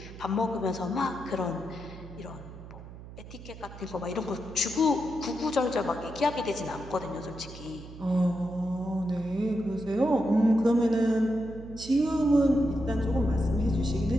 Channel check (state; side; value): noise; right; hum, 15 dB below the sound